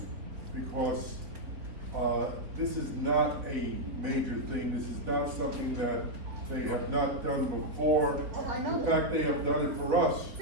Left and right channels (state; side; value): late; left; 4.3 ms